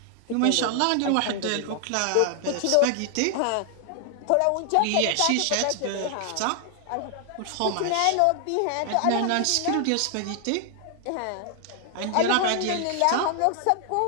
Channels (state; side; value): different; both; correlation 0.00